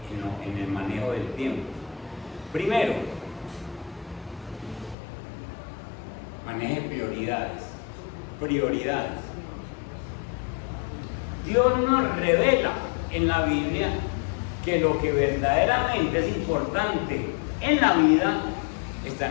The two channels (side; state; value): right; drops out; at 5.0 s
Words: el manejo del tiempo. Primero, maneje prioridades. Prioridades. Dios nos revela en la Biblia que lo que verdaderamente es importante en la vida está